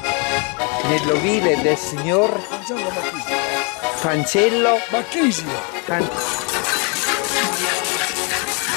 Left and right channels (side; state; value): right; quieter; 34.0 dB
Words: nell'ovile del signor Angelo Macchini. Cancello Bacchisio.